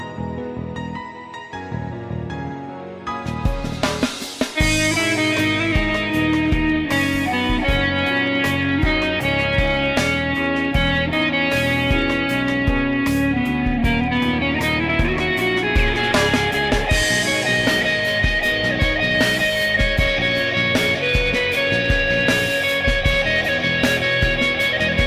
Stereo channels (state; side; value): identical; both; correlation 1.00